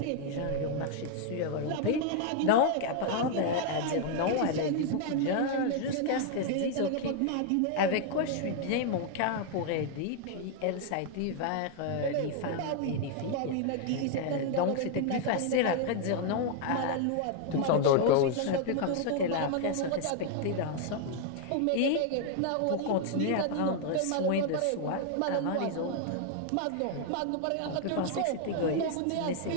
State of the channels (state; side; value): different; both; correlation 0.00